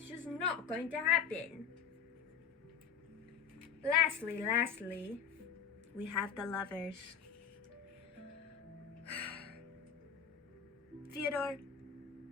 just not going to happen. Lastly, we have the Lovers. Fyodor,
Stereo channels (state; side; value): quieter; right; 7.3 dB